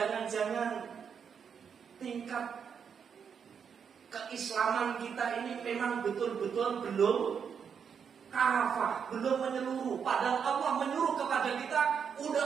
tingkat keislaman kita ini memang betul-betul belum kafah, belum menyeluruh. Padahal Allah menyuruh kepada kita,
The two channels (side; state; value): left; quieter; 7.0 dB